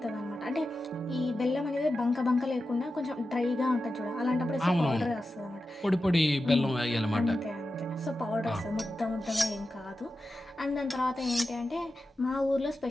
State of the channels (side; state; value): both; normal; correlation 0.92